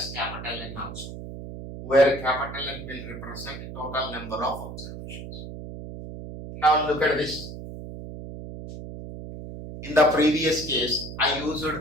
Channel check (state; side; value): noise; right; hum, 10 dB below the sound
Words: capital N also, where capital N will represent the total number of observations. Now look at this. In the previous case, I